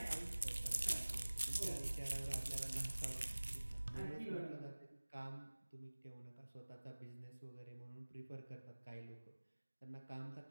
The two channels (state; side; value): inverted; both; correlation -1.00